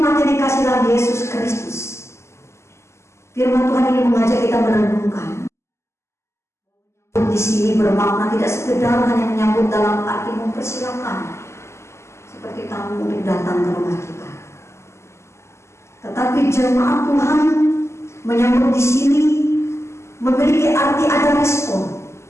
yang dikasih dalam Yesus Kristus, firman Tuhan ini mengajak kita merenungkan. Di sini bermakna tidak sekedar hanya menyambut dalam arti mempersilakan seperti tamu untuk datang ke rumah kita, tetapi jemaat Tuhan menyambut di sini memiliki arti ada respon.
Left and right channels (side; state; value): right; late; 0.13 ms